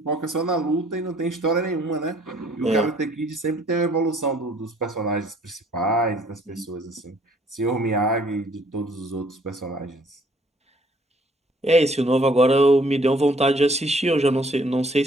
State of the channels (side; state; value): both; normal; correlation 0.61